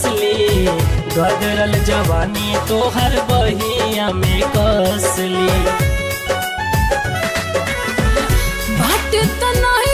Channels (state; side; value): identical; both; correlation 1.00